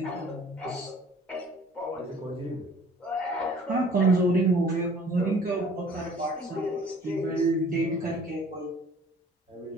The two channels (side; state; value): both; normal; correlation 0.52